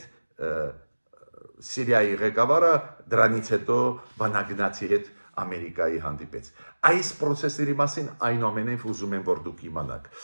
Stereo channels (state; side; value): inverted; both; correlation -1.00